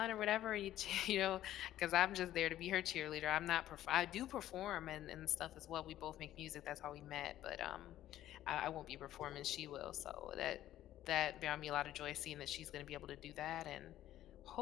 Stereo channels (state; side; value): quieter; right; 13.1 dB